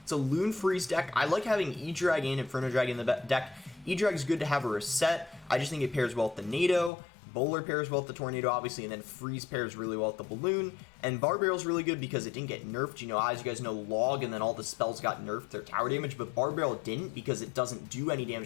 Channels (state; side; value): drops out; right; at 6.9 s